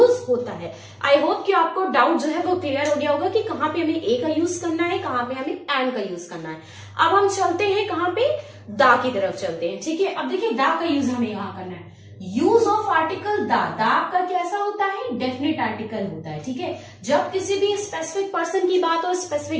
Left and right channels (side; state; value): both; identical; correlation 1.00